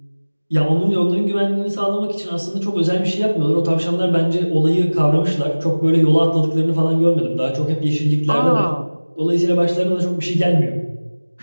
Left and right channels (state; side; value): inverted; both; correlation -1.00